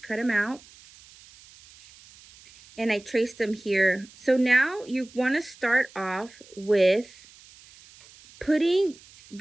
them out and I traced them here. So now you want to start off with putting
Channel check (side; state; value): right; noise; hiss, 24 dB below the sound